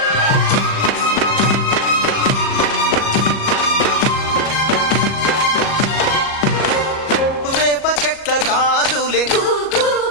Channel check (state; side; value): late; right; 37 ms